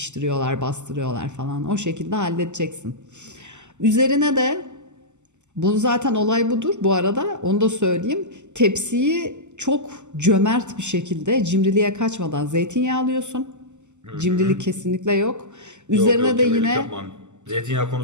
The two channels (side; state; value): left; late; 0.84 ms